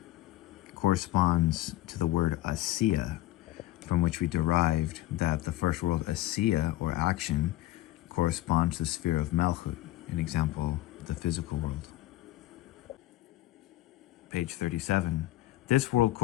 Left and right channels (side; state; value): right; quieter; 16.1 dB